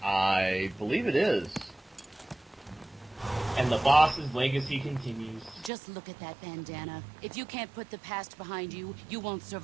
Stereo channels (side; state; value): left; drops out; at 5.7 s